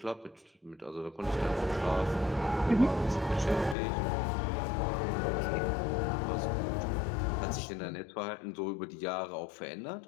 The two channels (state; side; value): drops out; right; at 3.8 s